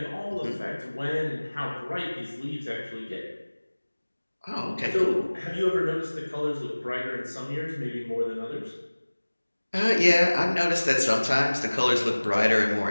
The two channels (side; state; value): both; inverted; correlation -1.00